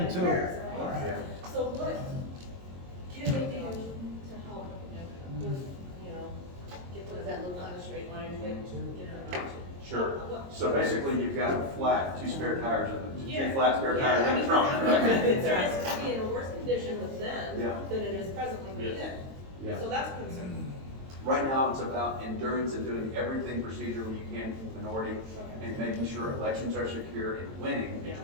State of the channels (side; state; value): left; late; 22 ms